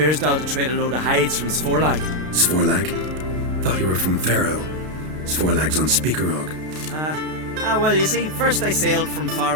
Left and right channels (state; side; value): late; left; 32 ms